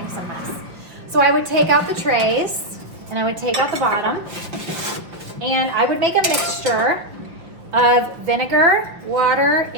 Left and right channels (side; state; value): left; late; 5.6 ms